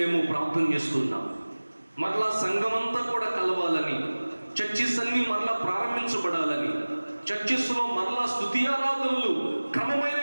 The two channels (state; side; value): inverted; both; correlation -1.00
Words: ప్రార్థన చేస్తున్నాం. మరలా సంఘమంతా కూడా కలవాలని, చర్చిస్ అన్ని మరలా ప్రారంభించబడాలని, చర్చిస్లో మరలా స్తుతి ఆరాధనలు క్రమమైన